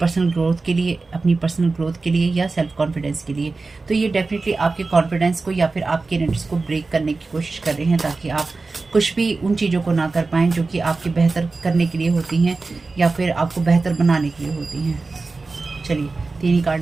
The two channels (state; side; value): quieter; left; 3.8 dB